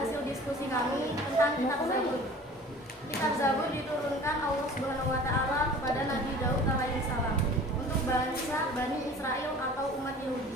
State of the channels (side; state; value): both; normal; correlation 0.44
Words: diskusi kami tentang kitab Zabur. Kitab Zabur diturunkan Allah Subhanahu wa taala kepada Nabi Daud alaihissalam untuk bangsa Bani Israel atau umat